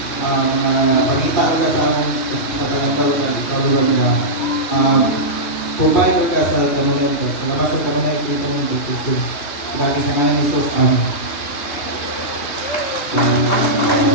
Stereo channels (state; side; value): late; right; 2.8 ms